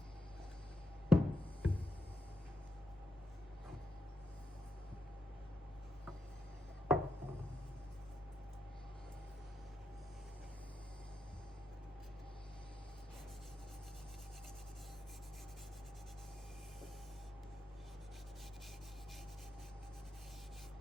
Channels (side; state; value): both; normal; correlation 0.84